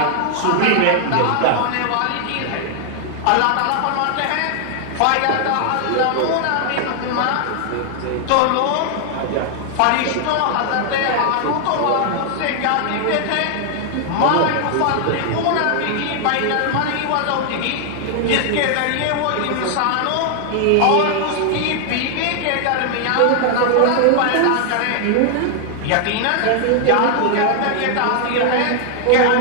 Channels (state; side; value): different; both; correlation 0.00